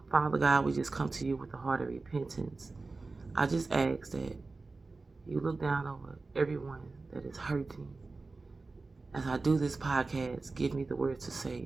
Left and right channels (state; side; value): quieter; left; 3.7 dB